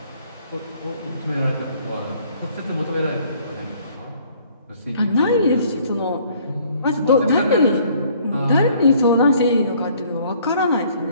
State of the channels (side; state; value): both; inverted; correlation -0.59